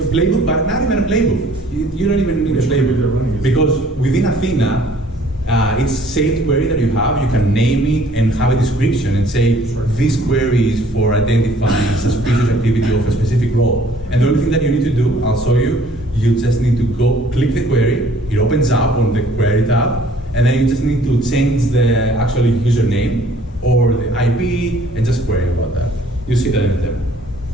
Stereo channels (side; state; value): both; normal; correlation 0.57